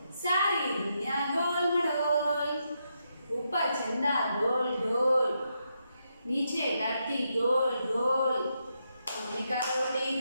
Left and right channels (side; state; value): both; inverted; correlation -0.82